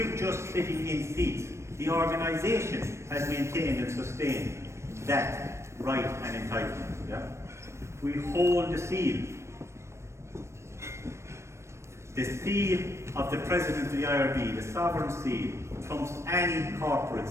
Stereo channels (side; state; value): left; late; 0.13 ms